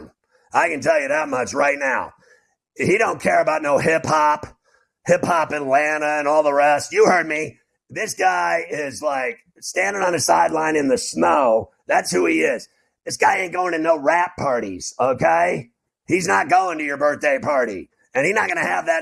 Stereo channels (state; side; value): identical; both; correlation 1.00